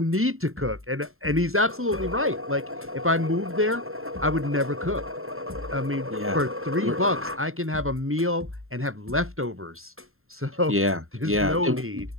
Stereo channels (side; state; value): left; late; 0.61 ms